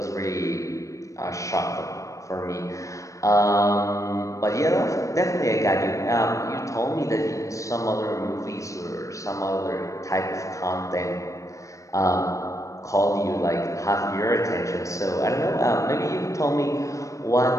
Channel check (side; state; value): right; late; 0.16 ms